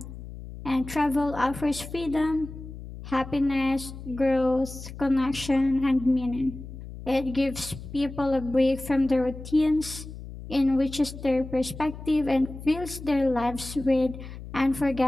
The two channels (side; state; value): left; noise; hum, 12 dB below the sound